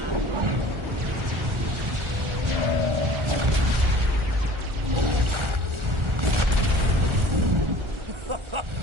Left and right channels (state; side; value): late; left; 1.4 ms